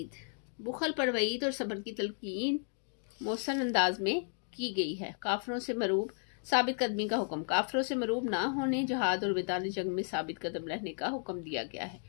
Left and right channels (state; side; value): silent; right; 55 dB below the other